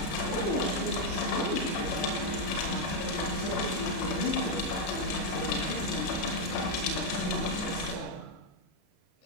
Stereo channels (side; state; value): right; late; 33 ms